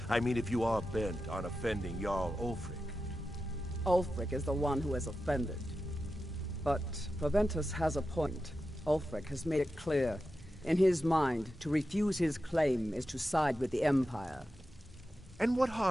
I mean, if you are bent on offending Jarl Ulfric. Ulfric is the one who has offended. But Proventus has a point. Ulfric has made it clear In his mind, to refuse his claim is to side with the Empire. And what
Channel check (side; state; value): both; normal; correlation 0.91